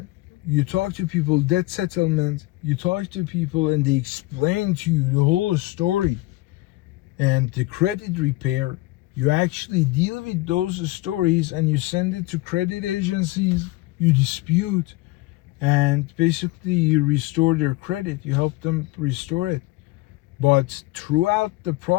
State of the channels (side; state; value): right; quieter; 19.7 dB